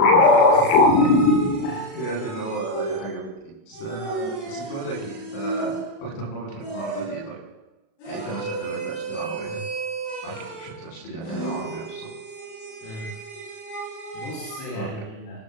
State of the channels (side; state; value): right; late; 36 ms